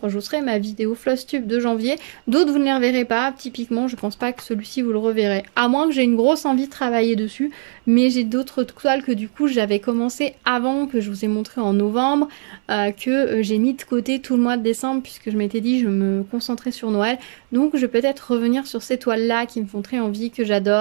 je vous ferai ma vidéo Flosstube de janvier. D'autres, vous ne les reverrez pas. Typiquement, je pense pas que celui-ci, vous le reverrez. À moins que j'ai une grosse envie de travailler dessus. Mais j'ai d'autres toiles que du coup, j'avais commencé avant, que je vous ai montré en novembre, que j'ai mis de côté tout le mois de décembre puisque je m'étais dit je me concentrais sur Noël. Donc, je vais peut-être revenir sur ces toiles-là qui me font très envie, que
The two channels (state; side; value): silent; left; 65 dB below the other